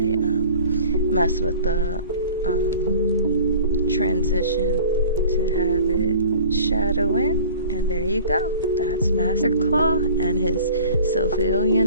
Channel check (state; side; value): inverted; both; correlation -0.46